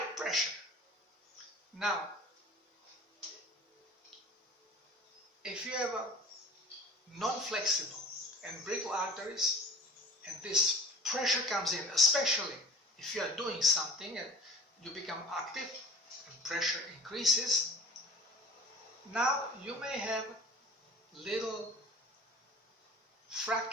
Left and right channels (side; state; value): both; normal; correlation 0.41